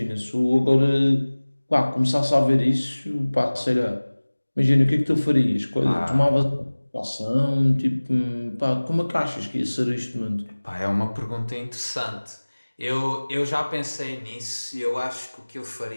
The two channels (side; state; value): both; inverted; correlation -1.00